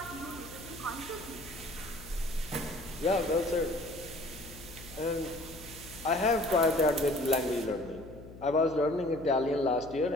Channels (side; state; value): left; noise; hum, 16 dB below the sound